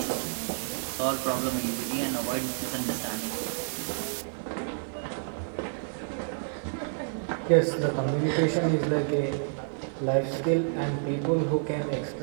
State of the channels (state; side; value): silent; left; 55 dB below the other